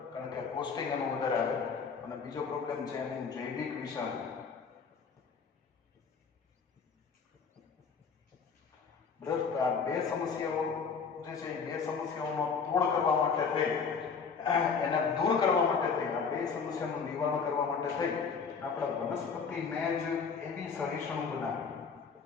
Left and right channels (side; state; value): right; quieter; 5.7 dB